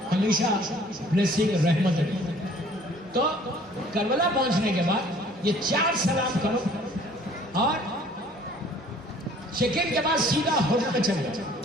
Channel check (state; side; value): normal; both; correlation 0.54